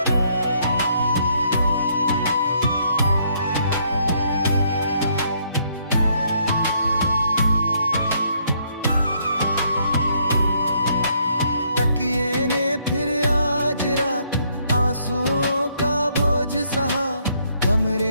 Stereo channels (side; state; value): both; inverted; correlation -0.70